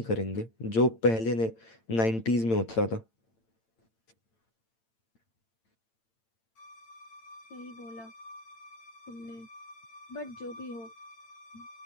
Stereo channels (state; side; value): late; right; 8.9 ms